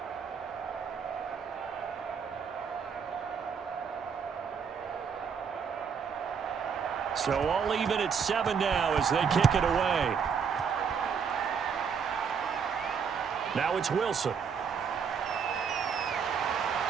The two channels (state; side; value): quieter; left; 6.6 dB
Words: So all even at 7 now as they kick it away. Now it's Wilson.